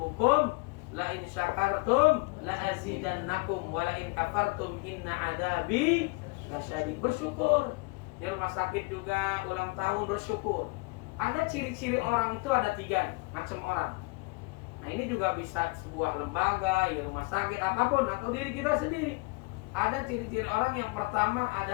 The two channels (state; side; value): quieter; right; 27.4 dB